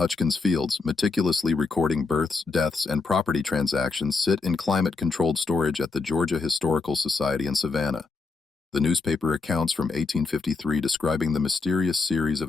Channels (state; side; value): quieter; right; 4.1 dB